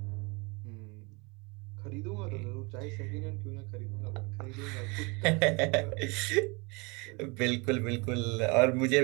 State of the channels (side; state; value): left; quieter; 28.6 dB